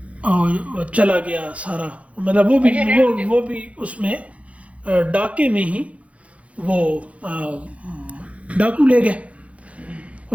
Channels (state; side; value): late; left; 0.064 ms